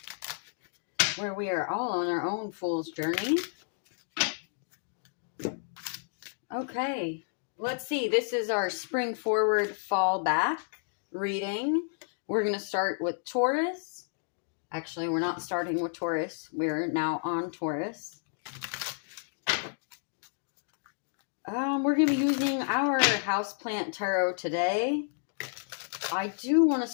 where we are all on our own fool's journey. Okay, let's see. This is our spring forward, fall back reading. We're going to start with Taurus. Actually, we're not starting with Taurus. We're now on Taurus. We're going to be using our houseplant tarot today. I do want to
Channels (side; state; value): right; silent; digital silence